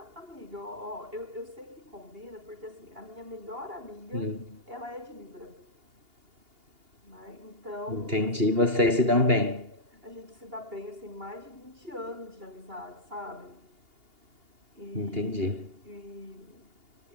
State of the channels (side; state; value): left; late; 2.8 ms